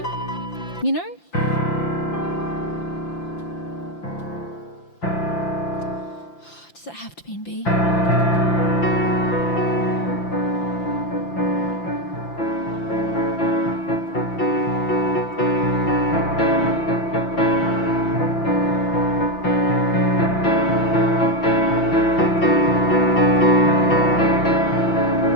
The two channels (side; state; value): right; late; 5.9 ms